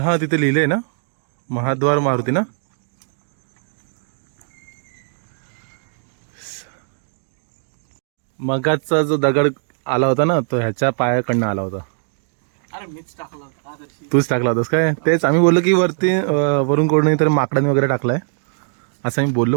तिथे लिहिलंय ना महाद्वार मारुती ना. मगाचा जो दगड आला होता ना तो ह्याच्या पायाकडनं आला होता. अरे मीच टाकलं आदर्शी. तूच टाकला होतास काय? तेच आम्ही बोललो की वरती वरून कोण नाही तर माकडाने वगैरे टाकलाय असं आम्ही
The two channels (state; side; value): silent; left; digital silence